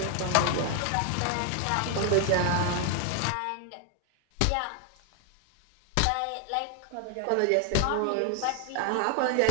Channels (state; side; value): different; both; correlation 0.01